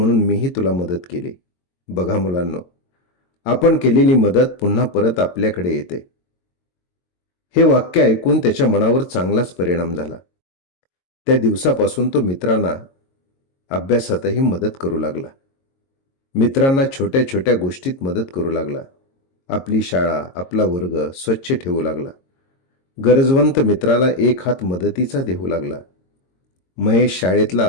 मीही तुला मदत केली. बघा मुलांनो, आपण केलेली मदत पुन्हा परत आपल्याकडे येते. हे वाक्य ऐकून त्याच्या मनावर चांगलाच परिणाम झाला. त्या दिवसापासून तो मित्रांना अभ्यासातही मदत करू लागला. मित्रांना छोट्या छोट्या गोष्टीत मदत करू लागला. आपली शाळा, आपला वर्ग स्वच्छ ठेवू लागला. गरजवंत मित्राला एक हात मदतीचा देऊ लागला. महेश शाळेतला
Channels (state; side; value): late; right; 22 ms